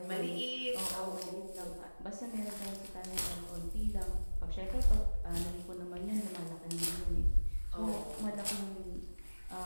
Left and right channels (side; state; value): both; inverted; correlation -1.00